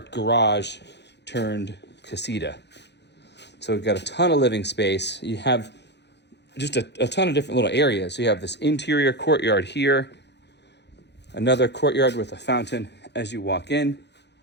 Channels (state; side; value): late; right; 0.50 ms